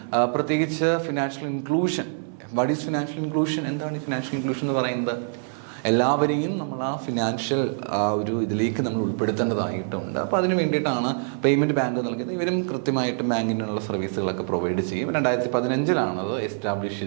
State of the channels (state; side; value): silent; left; 57 dB below the other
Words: പ്രത്യേകിച്ച് financial inclusion what is financial inclusion? എന്താണ് ഈ ഫിനാൻഷ്യൽ ഇൻക്ലൂഷൻ എന്ന് പറയുന്നത്? എല്ലാവരെയും നമ്മൾ ആ ഫിനാൻഷ്യൽ ഒരു ഇതിലേക്ക് നമ്മൾ ഉൾപ്പെടുത്തേണ്ടതായിട്ടുണ്ട്. അപ്പോൾ അതിന് വേണ്ടിയിട്ടാണ് പേയ്മെൻറ്റ് ബാങ്ക് നൽകുന്നത്. ഇവരും കൃത്യമായിട്ടും ബാങ്കിനുള്ള സർവീസുകളൊക്കെ പ്രൊവൈഡ് ചെയ്യും. 2015 അത് എസ്റ്റാബ്ലിഷ്